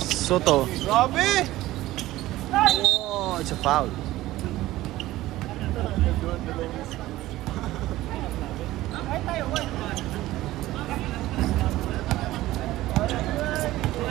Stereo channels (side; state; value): left; quieter; 16.4 dB